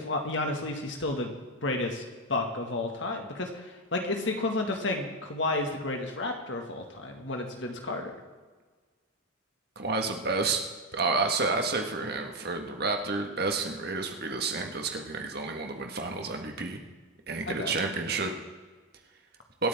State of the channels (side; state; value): both; normal; correlation 0.08